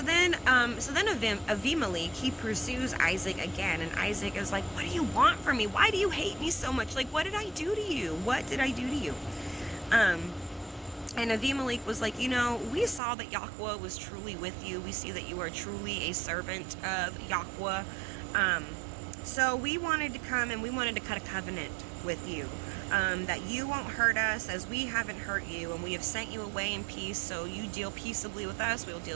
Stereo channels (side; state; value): left; drops out; at 13.0 s